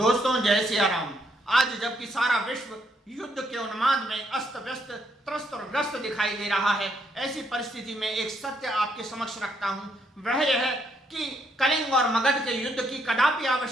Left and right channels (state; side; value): normal; both; correlation 0.74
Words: जय सिया राम। आज जबकि सारा विश्व युद्ध के उन्माद में अस्त व्यस्त, त्रस्त और ग्रस्त दिखाई दे रहा है, ऐसी परिस्थिति में एक सत्य आपके समक्ष रखता हूं। वह यह है कि कलिंग और मगध के युद्ध की कदापि